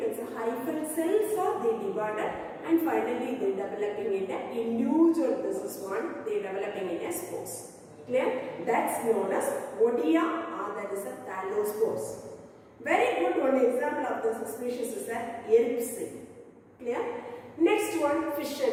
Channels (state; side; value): identical; both; correlation 1.00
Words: it's a hyphal cells are they divided and finally they developing in a individual. This is one they developing in a spores. Clear? That's known as Odia or that is a thallospores. Very good one example of this species is a Yeripsi. Clear? Next one, fission.